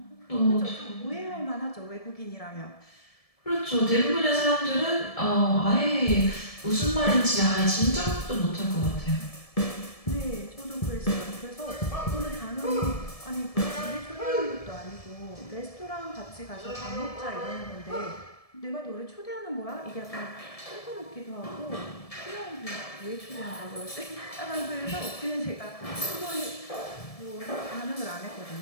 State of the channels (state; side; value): late; right; 1.7 ms